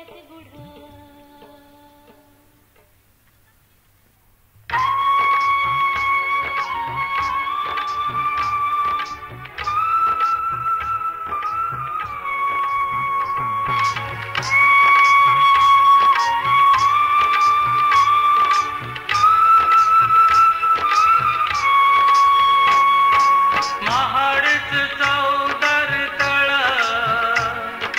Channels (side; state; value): both; identical; correlation 1.00